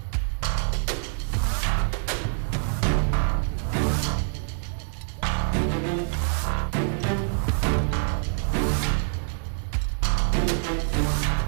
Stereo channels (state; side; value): silent; left; digital silence